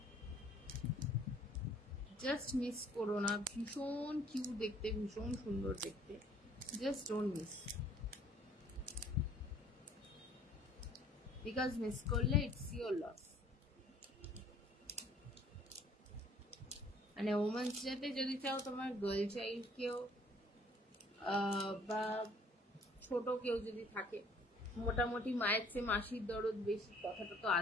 জাস্ট মিস করো না, ভীষণ কিউট দেখতে, ভীষণ সুন্দর দেখতে, just don't miss, because miss করলে ইটস ইয়োর লস। মানে ওমেন্স ডেতে যদি চাও তোমার গার্ল চাইল্ড কেউ বা ছোট কেউ যদি থাকে, মোটামুটি মায়ের চেয়ে মাসির দরদ বেশি কথাটা তো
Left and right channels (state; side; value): normal; both; correlation 0.58